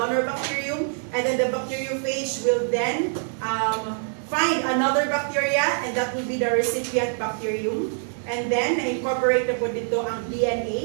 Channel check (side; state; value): left; silent; digital silence